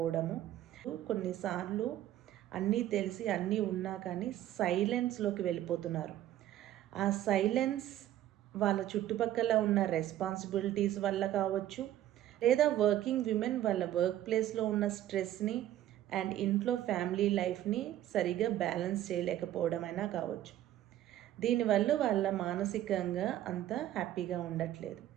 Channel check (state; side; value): quieter; left; 12.9 dB